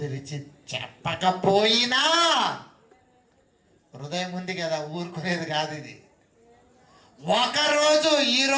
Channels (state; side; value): identical; both; correlation 1.00